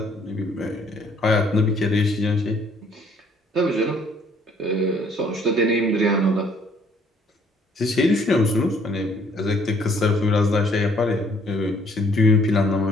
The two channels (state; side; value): normal; both; correlation 0.62